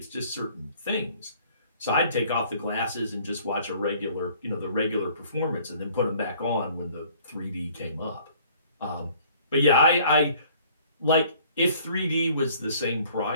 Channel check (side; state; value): both; inverted; correlation -0.55